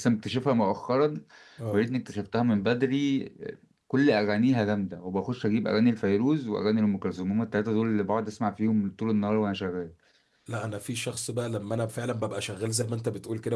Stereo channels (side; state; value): both; identical; correlation 1.00